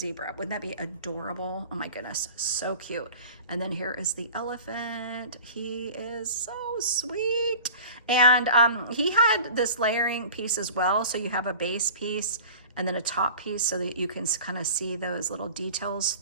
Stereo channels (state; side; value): inverted; both; correlation -0.41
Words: Wouldn't that be adorable? Oh my goodness, so cute. And then here is the elephant. He is so sweet. And he had this layering piece as well. So you have a base piece and then a top piece so that you can kind of see those little details